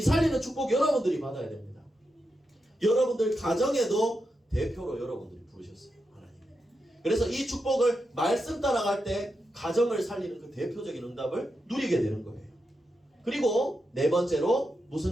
살리는 축복 여러분들이 받아야 됩니다. 여러분들 가정에도 대표로 여러분들이 부르셨어요. 하나님. 그래서 이 축복을 말씀 따라갈 때 가정을 살리는 그 대표적인 응답을 누리게 되는 거예요. 그리고 네 번째로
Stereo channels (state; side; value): normal; both; correlation 0.87